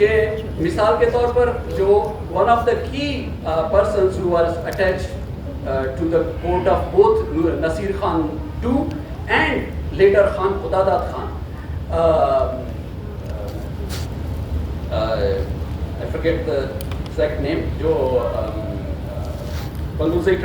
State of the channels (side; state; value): both; identical; correlation 1.00